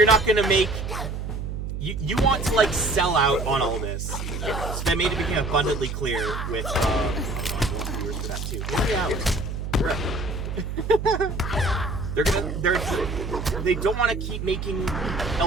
not gonna make you want to like sell out on all this. So that made it become abundantly clear with I want viewers for that too. 3 hours. Correct. They don't want to keep making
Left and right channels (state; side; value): noise; right; hum, 5 dB below the sound